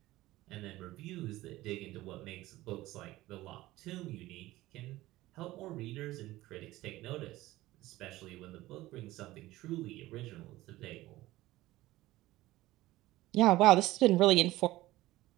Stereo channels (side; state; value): left; quieter; 17.3 dB